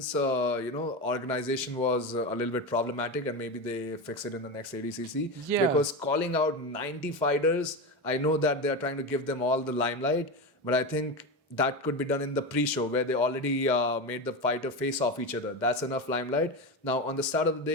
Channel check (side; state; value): both; normal; correlation 0.18